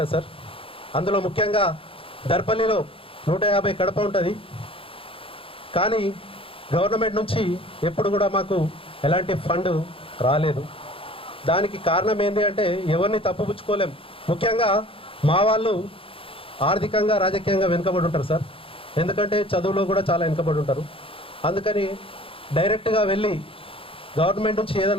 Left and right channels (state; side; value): late; right; 0.26 ms